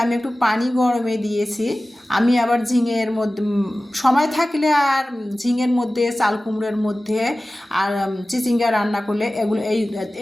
আমি একটু পানি গরমে দিয়েছি। আমি আবার ঝিঙের মধ্যে সময় থাকলে আর ঝিঙের মধ্যে, চাল কুমড়োর মধ্যে, আর চিচিঙ্গা রান্না করলে, এগুলো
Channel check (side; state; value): both; normal; correlation 0.96